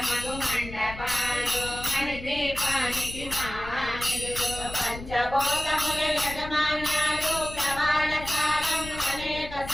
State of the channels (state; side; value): noise; left; rumble, 12 dB below the sound